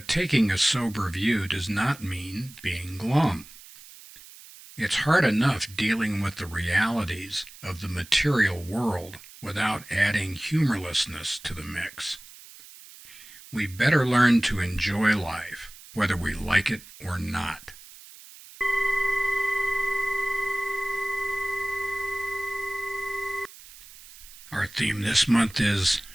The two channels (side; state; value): right; noise; hiss, 19 dB below the sound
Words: taking a sober view does not mean being glum. It's hard enough dealing with the realities of the material world without adding humorlessness to the mix. We better learn to enjoy life, whether we like it or not. Our theme this month is